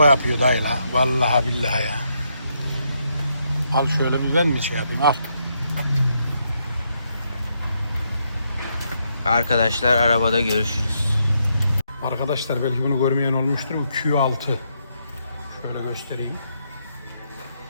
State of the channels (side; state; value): both; inverted; correlation -0.78